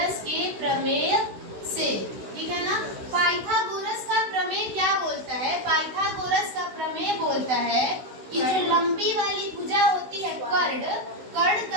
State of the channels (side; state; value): left; late; 16 ms